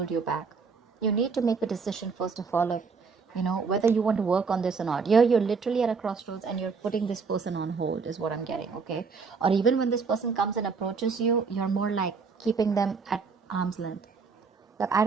you back. You need to make a decision first of all, if, whether you want to work on this or not. You're literally at a crossroads and you're putting this person on hold is what I'm getting, okay? Or even when this person comes and approaches you, you're more like keeping them at arm's length. Like, I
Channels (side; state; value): left; quieter; 5.1 dB